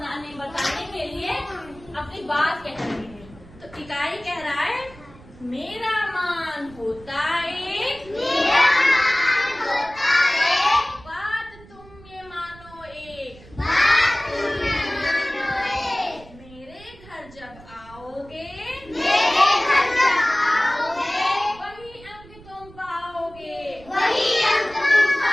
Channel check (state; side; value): noise; right; rumble, 21 dB below the sound